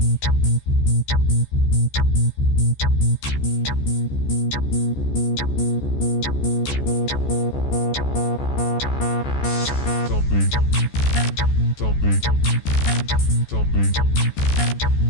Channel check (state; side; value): late; right; 14 ms